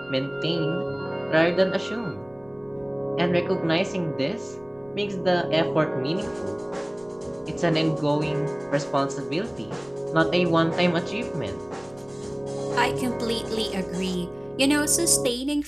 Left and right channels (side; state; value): right; noise; rumble, 27 dB below the sound